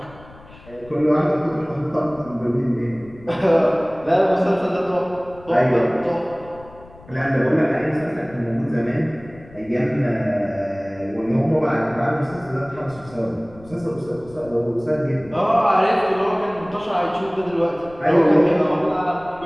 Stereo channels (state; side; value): noise; left; rumble, 22 dB below the sound